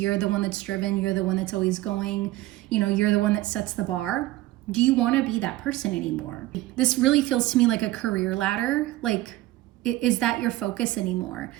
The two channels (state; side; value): quieter; left; 17.0 dB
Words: the one that's driven, you're the one that's always going, you're the one that sets the bar? Do you want to be that person anymore? This really feels to me like a career ladder. Like, is that your focus anymore?